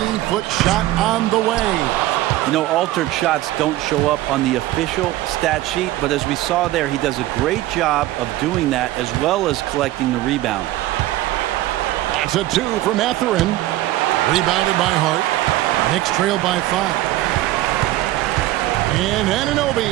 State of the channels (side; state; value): left; quieter; 15.9 dB